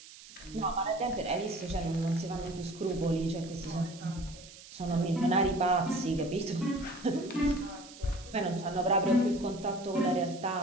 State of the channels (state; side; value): noise; right; hiss, 18 dB below the sound